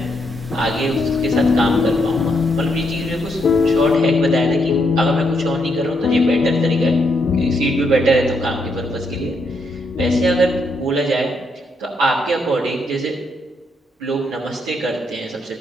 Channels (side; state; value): both; normal; correlation 0.77